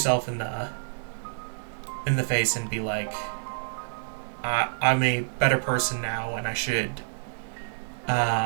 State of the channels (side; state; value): left; silent; digital silence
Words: in the face and be like, I'm a better person now, and I should